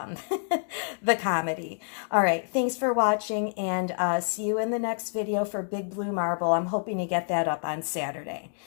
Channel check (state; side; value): silent; right; digital silence